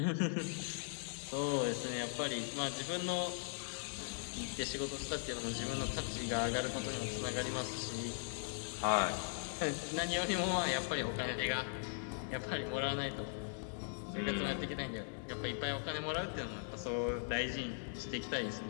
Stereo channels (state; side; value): silent; right; digital silence